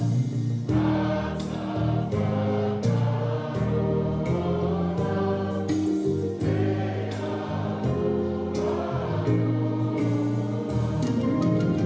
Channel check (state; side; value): identical; both; correlation 1.00